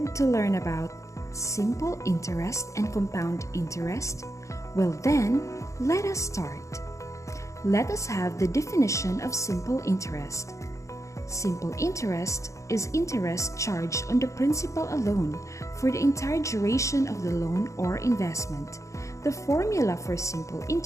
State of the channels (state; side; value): late; right; 0.15 ms